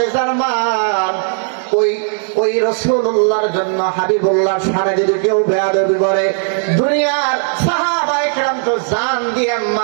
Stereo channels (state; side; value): silent; left; digital silence